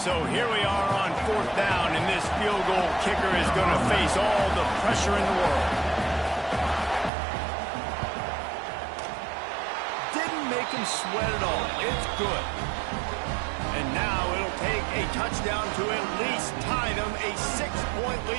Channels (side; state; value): left; drops out; at 7.1 s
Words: here we are on 4th down, and this field goal kicker is going to face all the pressure in the world. Didn't make him sweat at all. It's good. And now it'll take a touchdown to at least tie them a 6-point